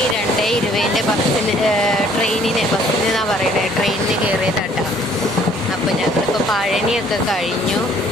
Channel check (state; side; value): normal; both; correlation 0.59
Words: 2:20 ബസ്സിന് ബസ്സിനെന്നാണ് പറയണേ, ട്രെയിനിന് കയറിയതാട്ടോ. അപ്പോൾ ഞങ്ങളിപ്പോൾ പഴനിയൊക്കെ കഴിഞ്ഞു.